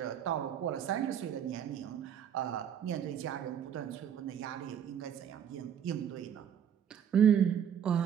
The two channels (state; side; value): quieter; left; 8.8 dB